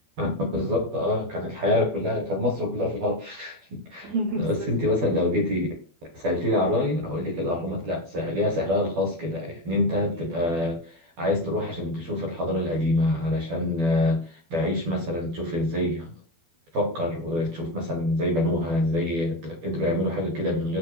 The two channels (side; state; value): left; late; 12 ms